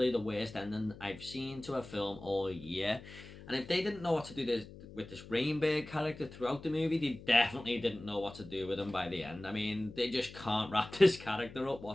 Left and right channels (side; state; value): left; noise; hum, 16 dB below the sound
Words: the worst ending I've seen to a film all year. And if they didn't know what to do with this Rainbird character throughout the movie, they definitely didn't know what to do with him by the end. I mean, they just can't wrap this character up